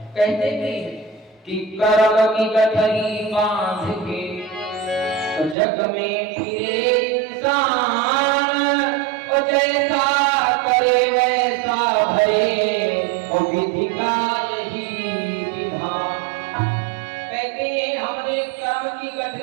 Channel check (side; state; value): left; drops out; at 5.6 s